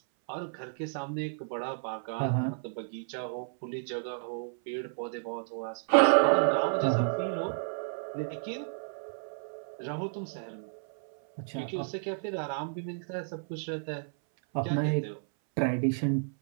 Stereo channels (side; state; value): left; silent; 57 dB below the other